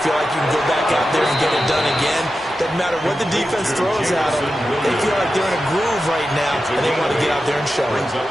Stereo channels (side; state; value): both; normal; correlation 0.91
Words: feel like you can go back out there and get it done again. Doesn't matter what the defense throws at them. They feel like they're in a groove right now, and they want to get out there and show it.